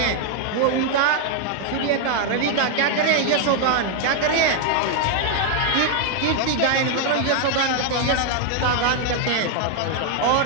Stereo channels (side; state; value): both; different; correlation 0.00